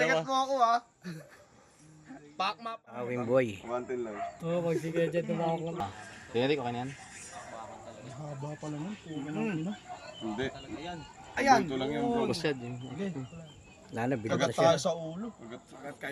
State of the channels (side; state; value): both; identical; correlation 1.00